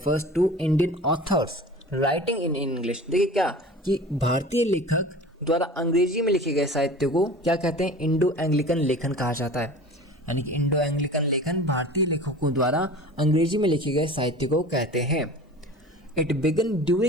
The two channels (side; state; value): both; normal; correlation 0.39